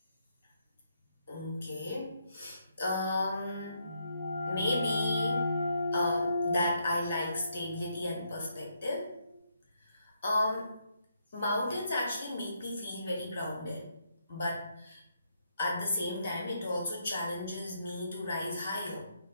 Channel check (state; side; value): inverted; both; correlation -0.77